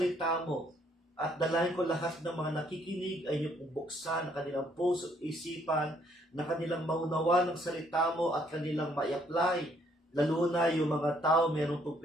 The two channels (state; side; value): normal; both; correlation 0.67